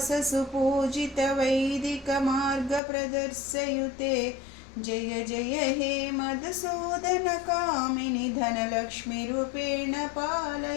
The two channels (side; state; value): right; drops out; at 2.8 s